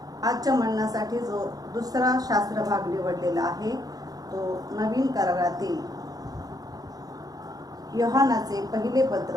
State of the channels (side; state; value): left; late; 0.18 ms